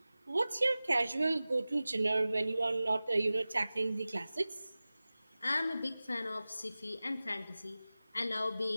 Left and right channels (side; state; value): both; inverted; correlation -0.97